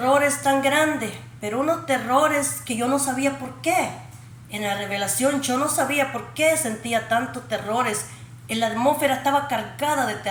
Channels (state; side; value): identical; both; correlation 1.00